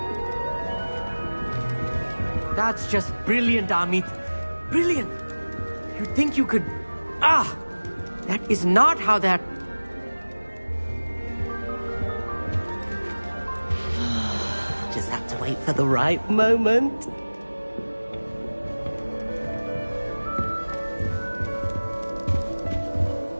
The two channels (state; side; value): inverted; both; correlation -1.00